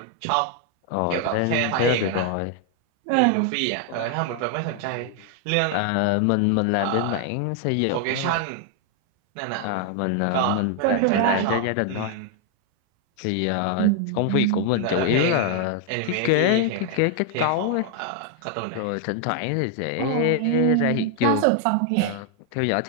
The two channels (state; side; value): different; both; correlation 0.00